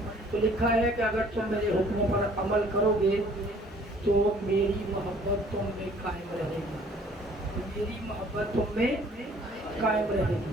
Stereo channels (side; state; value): both; normal; correlation 0.56